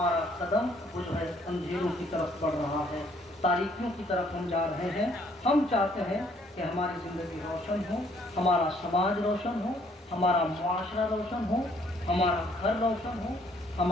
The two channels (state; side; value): normal; both; correlation 0.64